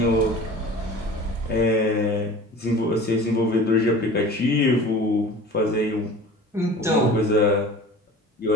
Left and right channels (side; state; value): both; normal; correlation 0.41